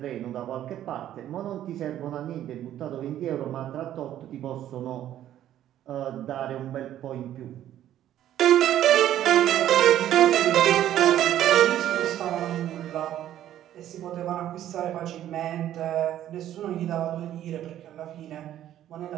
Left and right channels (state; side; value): quieter; left; 11.9 dB